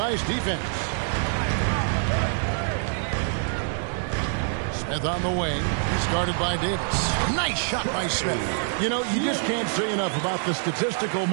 defense. Smith on the wing. He's guarded by Davis. Nice shot by Smith. You know, you just can't say enough about the statistical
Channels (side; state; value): left; silent; digital silence